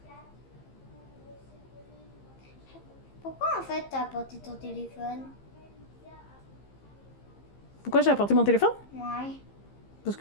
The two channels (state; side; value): late; right; 15 ms